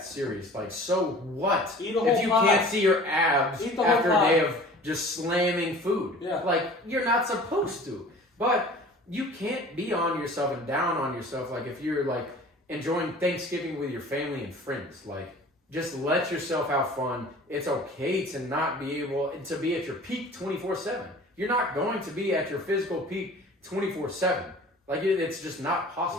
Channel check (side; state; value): both; normal; correlation 0.44